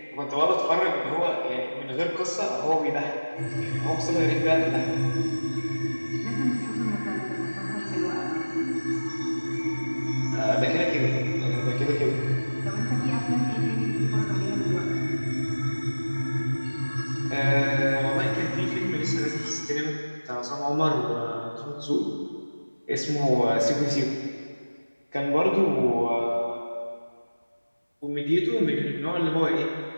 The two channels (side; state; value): both; inverted; correlation -1.00